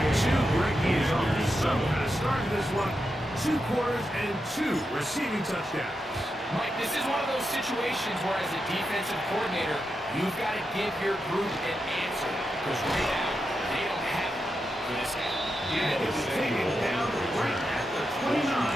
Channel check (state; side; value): normal; both; correlation 0.87